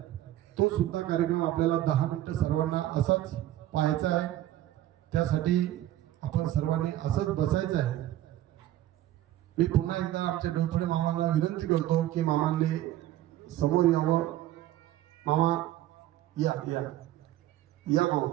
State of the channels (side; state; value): left; quieter; 13.8 dB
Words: तो सुद्धा कार्यक्रम आपल्याला 10 मिनिटं सर्वांना असाच पाहायचा आहे. त्यासाठी आपण सर्वांनी असंच बसायचं आहे. मी पुन्हा एकदा आमच्या डोळफळे मामांना विनंती करतो की मामांनी समोर यावं. मामा या या या मामा.